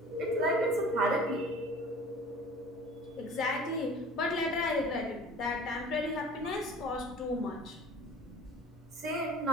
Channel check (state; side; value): normal; both; correlation 0.43